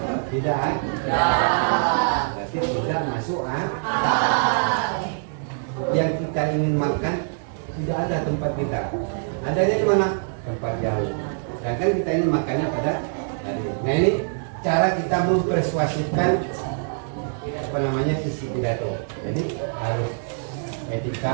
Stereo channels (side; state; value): left; silent; 63 dB below the other